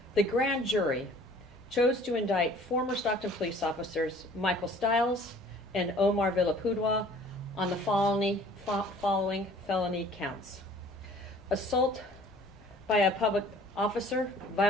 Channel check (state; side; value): normal; both; correlation 0.52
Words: The grand jury chose to indict former Stockton police officers Michael Stiles and Omar Villapudua on the following felony counts: assault by a public officer,